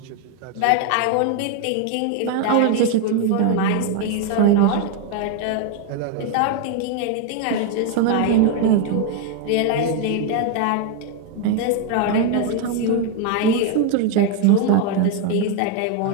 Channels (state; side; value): different; both; correlation 0.01